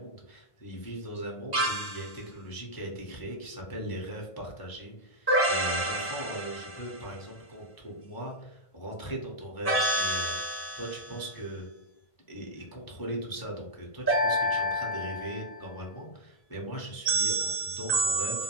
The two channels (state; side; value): late; right; 1.5 ms